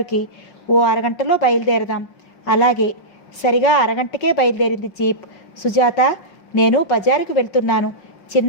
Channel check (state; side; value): late; right; 5.3 ms